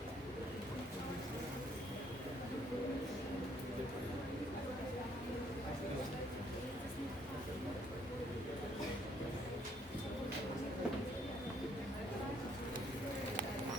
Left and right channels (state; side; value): normal; both; correlation 0.67